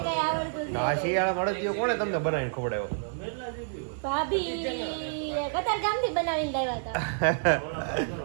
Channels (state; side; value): silent; left; 59 dB below the other